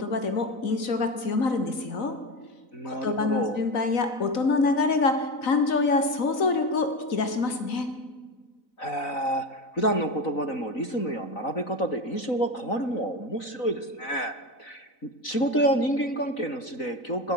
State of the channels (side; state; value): right; late; 4.0 ms